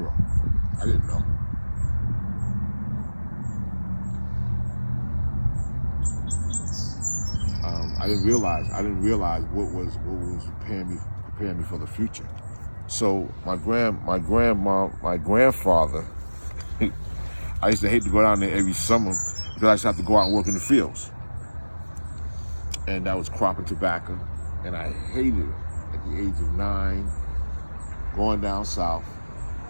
I didn't know. I didn't realize what was preparing me for the future. So my grandfather, I used to hate to go down there every summer because I used to have to go out and work in the fields. And that was cropping tobacco, and I hated it at the age of 9, going down south,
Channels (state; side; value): inverted; both; correlation -1.00